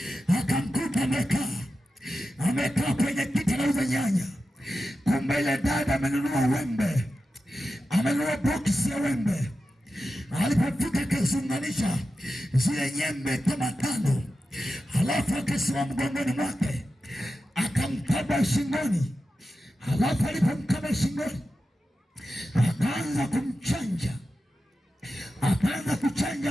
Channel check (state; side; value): normal; both; correlation 0.91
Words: Akamkuta amekaa kwenye kiti anauza nyanya. Kumbe ile dada amenunua wembe, amenunua boksi ya wembe. Alipofika akaziunganisha zile nyembe kama 5, halafu akasimama mgongoni mwake akamkaba shingoni. Halafu alipomkaba shingoni akaanza kumchanja, akaanza